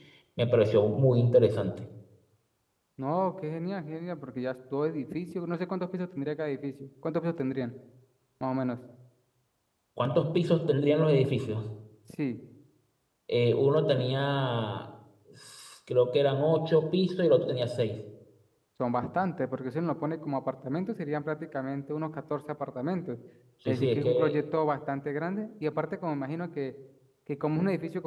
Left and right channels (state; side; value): identical; both; correlation 1.00